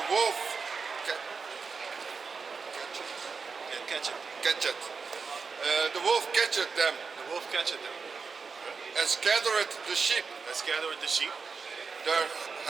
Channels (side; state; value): left; quieter; 5.1 dB